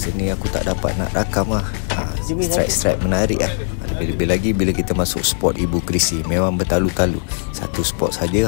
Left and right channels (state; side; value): silent; right; digital silence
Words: ni aku tak dapat nak rakam strike menarik Lebih-lebih lagi bila kita masuk spot Ibu Krisi, memang bertalu-talu. Satu spot